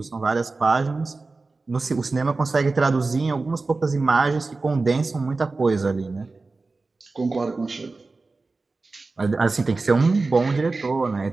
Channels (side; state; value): left; quieter; 3.7 dB